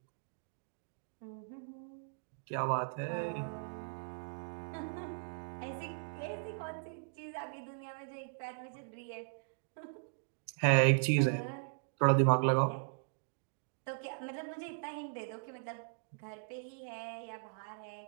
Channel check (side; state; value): left; silent; digital silence